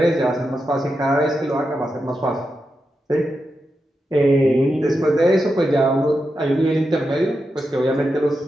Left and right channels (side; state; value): both; normal; correlation 0.88